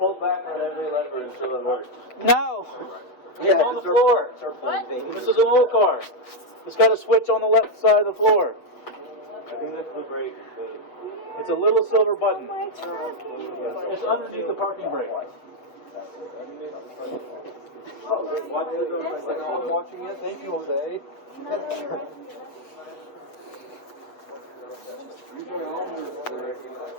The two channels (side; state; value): right; late; 8.0 ms